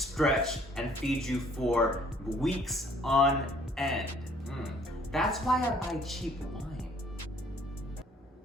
and feed you for weeks on end. That's why I buy cheap wine.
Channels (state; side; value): normal; both; correlation 0.60